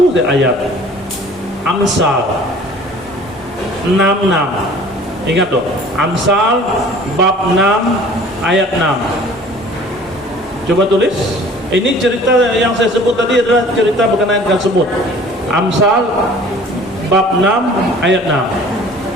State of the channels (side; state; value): both; normal; correlation 0.49